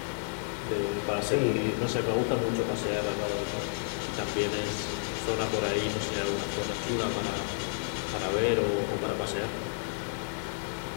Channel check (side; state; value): right; silent; digital silence